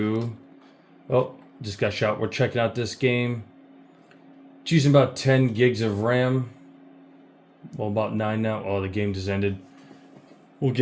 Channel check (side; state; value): both; identical; correlation 1.00